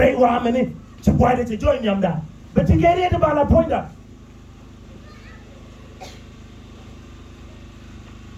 wa mene ci boide ci join yamda be ti gere de bala poinda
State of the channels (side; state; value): both; identical; correlation 1.00